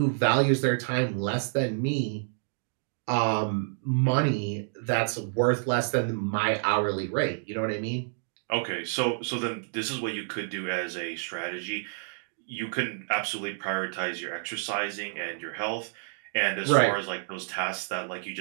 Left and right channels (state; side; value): silent; left; digital silence